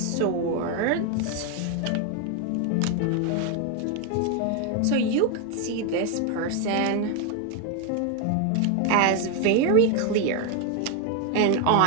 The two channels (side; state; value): both; different; correlation 0.01